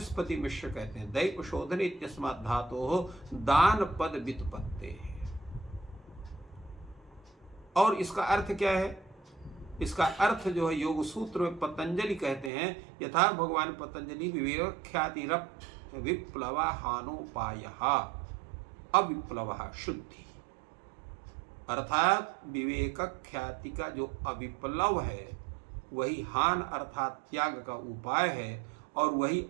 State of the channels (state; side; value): drops out; left; at 12.5 s